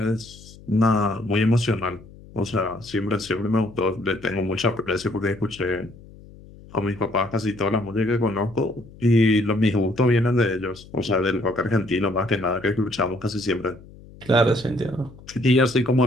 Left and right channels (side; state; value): left; noise; hum, 21 dB below the sound